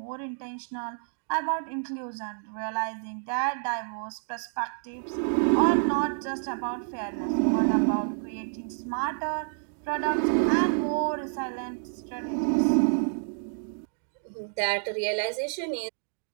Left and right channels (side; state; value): left; silent; digital silence